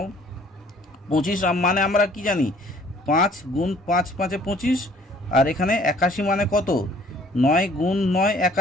25 মানে আমরা কি জানি 5 গুণ 5 5 25, আর এখানে 81 মানে কত 9 গুণ 9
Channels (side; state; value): both; normal; correlation 0.57